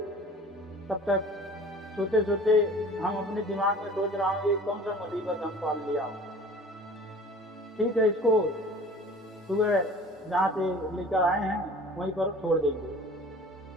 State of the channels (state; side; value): normal; both; correlation 0.45